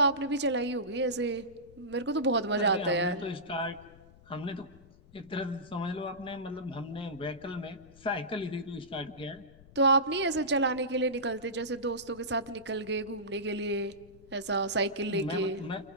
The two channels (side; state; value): left; noise; rumble, 23 dB below the sound